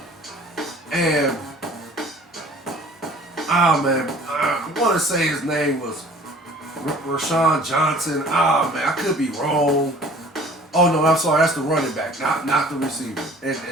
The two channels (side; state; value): both; normal; correlation 0.50